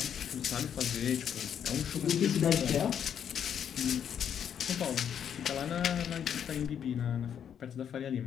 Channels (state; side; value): quieter; right; 8.6 dB